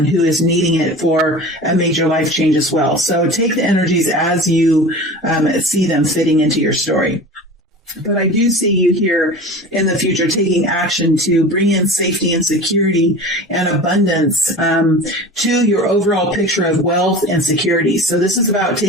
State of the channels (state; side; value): normal; both; correlation 0.35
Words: who is needing it for a major life change as well. So take the energies as you see them fitting into your story. But I do see you here in the future taking action to bring in safety and security and abundance to your overall picture of wealth and security. So this is about